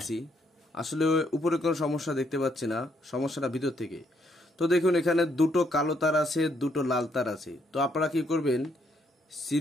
আসলে উপরে কোনো সমস্যা দেখতে পাচ্ছি না, সমস্যাটা ভিতর থেকে। তো দেখুন এখানে দুটো কালো তার আছে, দুটো লাল তার আছে। তো আপনারা কি করবেন,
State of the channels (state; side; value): normal; both; correlation 0.72